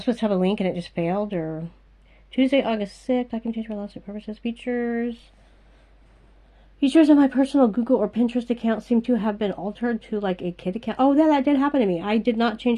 supposed to have a link and it just failed, or Tuesday, August 6th, I can change for lawsuit purposes. Features on my personal Google or Pinterest account seem to have been altered to like a kid account. Oh, that did happen to me. I did not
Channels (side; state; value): both; identical; correlation 1.00